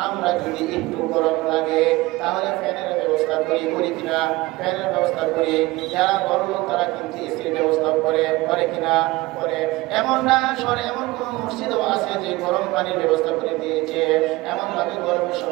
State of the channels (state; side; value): quieter; left; 20.5 dB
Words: আমরা যদি একটু গরম লাগে তাহলে ফ্যানের ব্যবস্থা করি কিনা ফ্যানের ব্যবস্থা করি যারা বড় লোক তারা কিন্তু এসির ব্যবস্থা করে কিনা করে এমন না সরে এমন কোন মসজিদও আছে যে গরম পানির ব্যবস্থা করে দিয়েছে এমন ভাবে গরমের